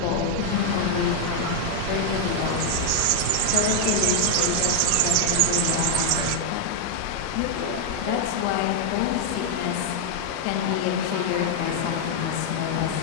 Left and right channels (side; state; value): both; different; correlation 0.00